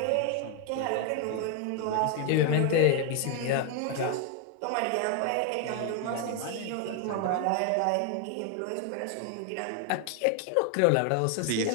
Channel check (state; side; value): different; both; correlation 0.01